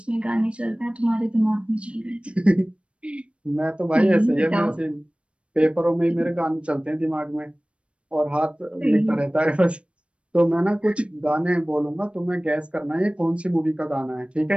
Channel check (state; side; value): late; left; 0.060 ms